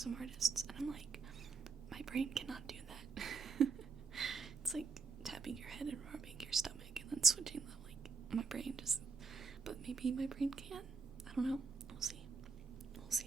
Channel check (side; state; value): left; quieter; 4.9 dB